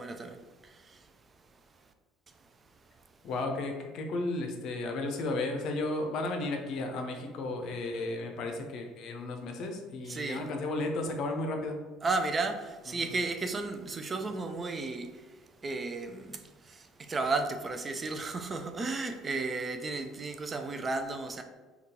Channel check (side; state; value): both; normal; correlation 0.65